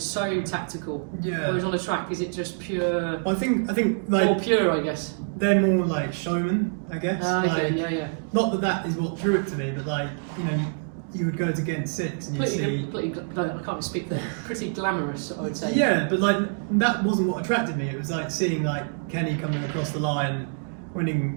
so tactical. Yeah. Whereas on a track, is it just pure? I think like more pure, I guess. They're more like showmen, I guess. Okay, Not that is what drew it to me, but like you would go to Ghent 6 and you'd see. I can't speak there. Pretty glamorous, I would say. Yeah, but like that wasn't what attracted me. It was like seeing like Kenny coming across the line,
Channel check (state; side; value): silent; left; digital silence